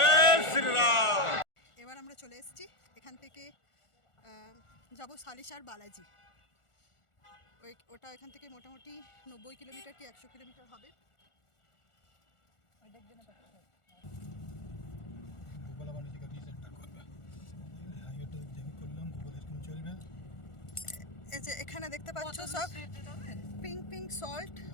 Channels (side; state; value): right; late; 1.4 ms